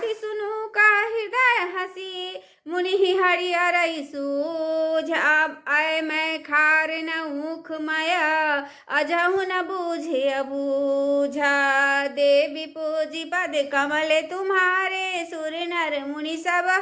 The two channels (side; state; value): both; identical; correlation 1.00